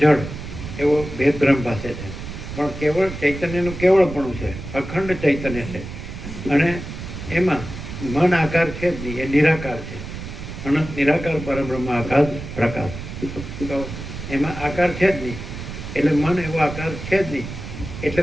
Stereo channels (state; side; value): noise; right; rumble, 9 dB below the sound